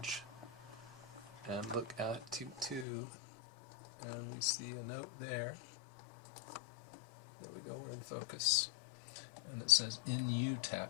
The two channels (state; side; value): drops out; right; at 2.9 s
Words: and look at 2:2, and we see a note there. There we go, we're in focus. And it says, "In you"